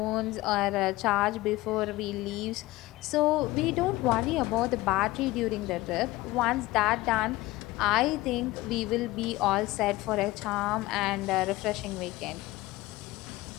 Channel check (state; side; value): quieter; right; 19.0 dB